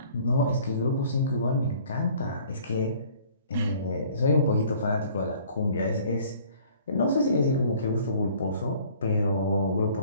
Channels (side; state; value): both; inverted; correlation -0.54